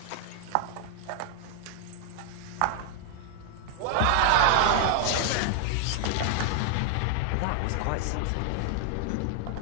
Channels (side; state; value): both; different; correlation 0.00